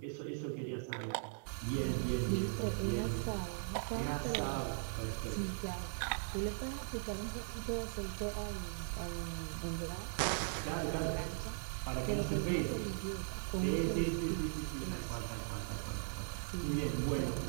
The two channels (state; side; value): silent; left; digital silence